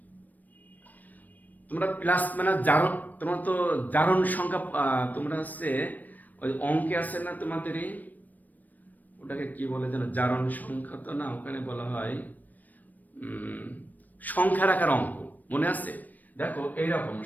তোমরা প্লাস মানে জারণ, তোমরা তো জারণ সংখ্যা তোমরা হচ্ছে ওই অঙ্কে আছে না তোমাদেরই, ওটাকে কি বলে যেন? জারণ সংখ্যা তো না, ওখানে বলা হয় সংখ্যা রাখার অঙ্ক, মনে আছে? দেখো এইরকম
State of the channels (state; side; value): late; right; 0.084 ms